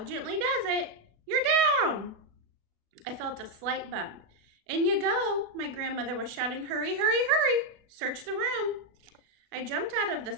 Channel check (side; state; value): left; late; 36 ms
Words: Gently does it. You're down." I felt a slight bump. "In you go," my grandmother was shouting. "Hurry, hurry, hurry! Search the room." I jumped out of the